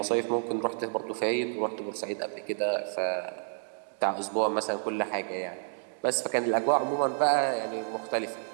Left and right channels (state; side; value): silent; left; digital silence